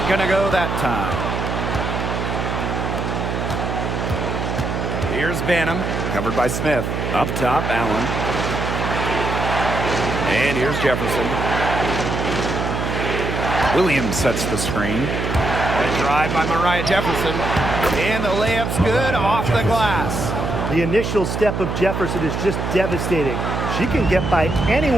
gonna go that time. Here's Banham, covered by Smith. Up top, Allen. And here's Jefferson. Williams sets the screen. A drive by Mariah Jefferson. And the layup's good off the glass. The initial step of Jefferson is just devastating. She can get by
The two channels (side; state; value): right; noise; hum, 2 dB below the sound